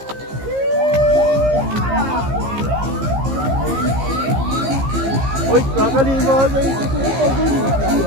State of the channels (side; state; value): left; late; 15 ms